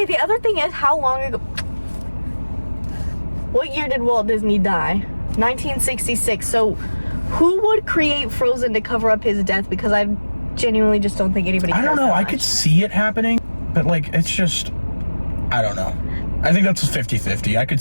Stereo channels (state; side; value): inverted; both; correlation -1.00